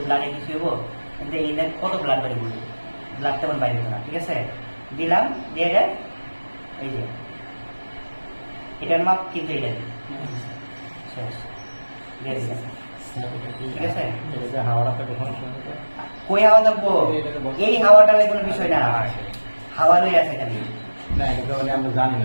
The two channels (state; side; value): inverted; both; correlation -1.00